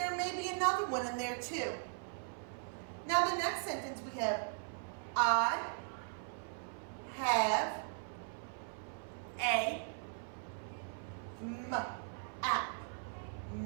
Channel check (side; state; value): left; silent; 52 dB below the other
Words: may be another one in there too. Now the next sentence we have, I have a map.